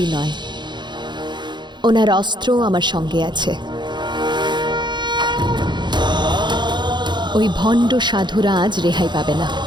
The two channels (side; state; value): left; late; 0.22 ms